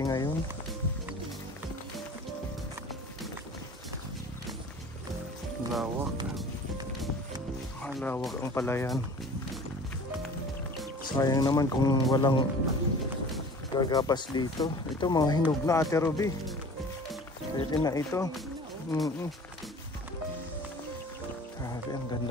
ngayon. Lawak. Malawak ang palayan. Sayang naman kung walang gagapas dito. Ito mga hinog na, Ate Ruby. Pwede na ito. Grabe, ang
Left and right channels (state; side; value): normal; both; correlation 0.44